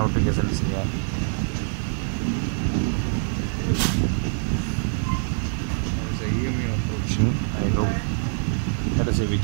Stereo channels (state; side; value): silent; left; 62 dB below the other